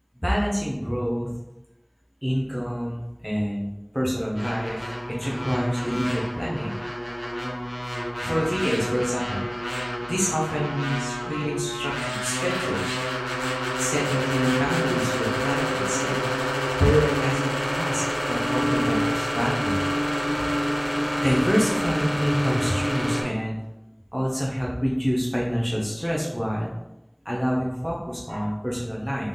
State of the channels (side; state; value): both; identical; correlation 1.00